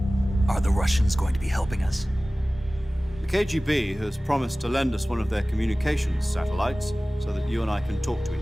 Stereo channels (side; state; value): both; normal; correlation 0.98